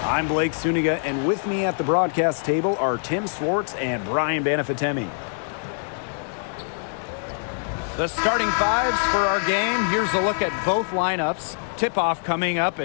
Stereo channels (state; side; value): silent; right; digital silence